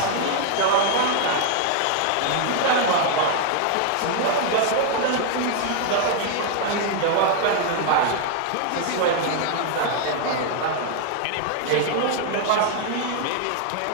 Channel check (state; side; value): different; both; correlation 0.00